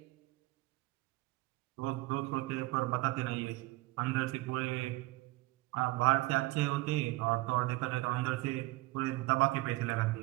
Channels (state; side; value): quieter; left; 19.8 dB